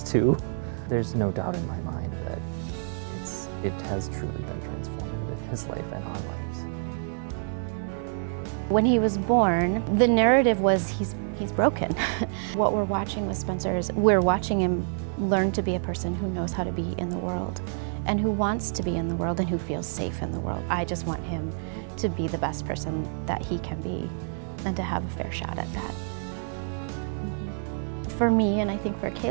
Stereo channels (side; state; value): left; silent; 60 dB below the other